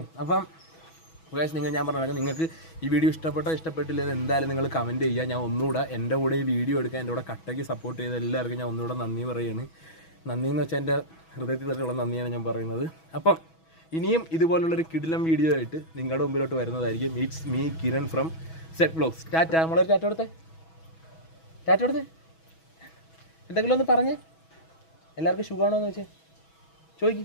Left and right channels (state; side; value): late; right; 6.2 ms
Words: അപ്പം നിങ്ങൾ, ഞാൻ പറഞ്ഞ നിങ്ങൾക്ക് ഈ വീഡിയോ ഇഷ്ടപ്പെട്ടില്ലെന്ന് എന്തായാലും നിങ്ങൾ കമൻറ്റ് ചെയ്യുക. ഞാൻ ഒന്നുകൂടെ എൻ്റെ കൂടെ ഈ വീഡിയോ എടുക്കാൻ എൻ്റെ കൂടെ കട്ടയ്ക്ക് സപ്പോർട്ട് ചെയ്ത എല്ലാവർക്കും ഞാൻ ഒന്നുകൂടെ നന്ദി പറയുകയാണ്. നന്ദി എന്ന് വെച്ചാൽ എൻ്റെ ഹൃദയത്തിൽ തന്നെയുള്ള നന്ദിയാണ് ഞാൻ പറയുന്നത്. അപ്പം ഇനിയും ഇതുപോലുള്ളൊരു കിടിലം വീഡിയോ ആയിട്ട് നിങ്ങളുടെ മുമ്പിലോട്ട് വരുന്നതായിരിക്കും. It's me Kiran from set vlogs. Tata. നമ്മളൊരു ടാറ്റ കൊടുത്തേ, ടാറ്റ കൊടുത്തേ. എന്തെങ്കിലും ഒന്ന് പറഞ്ഞേ, എല്ലാവർക്കും സുഖമാണോ എന്ന് വെച്ചേ ചോദിക്ക്,